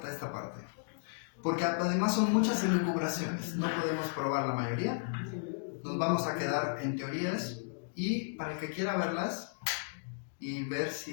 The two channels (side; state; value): right; silent; digital silence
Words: esta parte, porque además son muchas elucubraciones. No podemos probar la mayoría. Nos vamos a quedar en teorías y para el que quiera verlas y ver